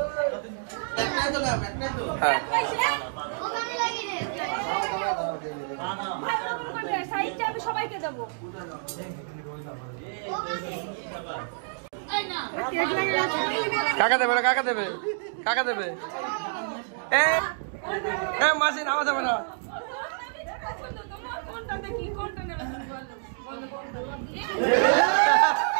সবাইকে দেবো। কাকা দেবে না, কাকা দেবে, কাকা দেবে। মাসি নামা যাবে না।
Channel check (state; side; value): silent; left; digital silence